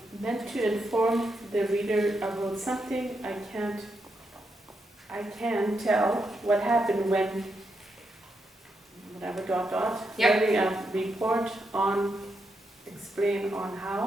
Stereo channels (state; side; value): normal; both; correlation 0.82